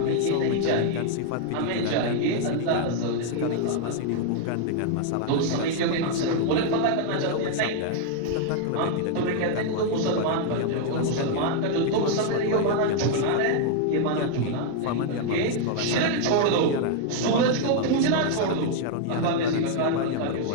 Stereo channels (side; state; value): both; different; correlation 0.00